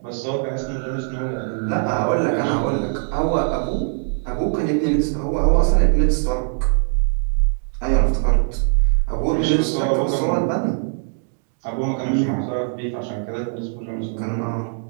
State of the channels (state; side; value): silent; left; 65 dB below the other